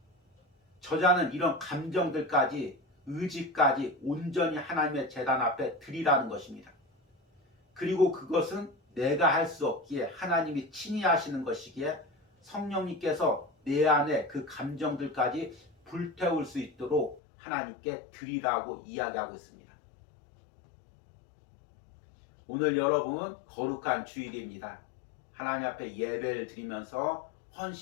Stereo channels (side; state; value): right; drops out; at 17.2 s